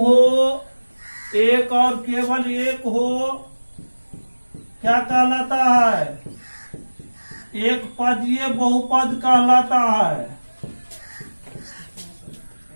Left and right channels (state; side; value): inverted; both; correlation -1.00